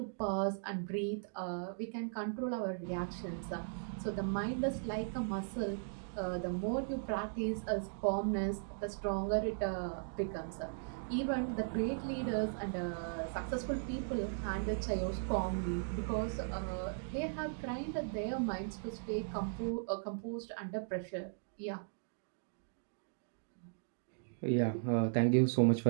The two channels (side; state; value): left; silent; digital silence